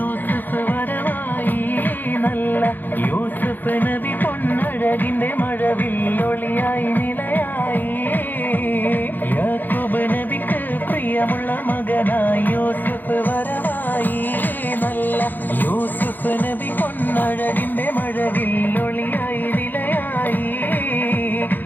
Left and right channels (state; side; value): late; right; 0.087 ms